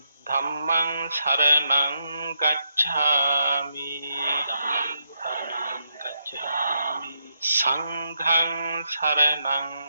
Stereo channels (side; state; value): both; inverted; correlation -0.79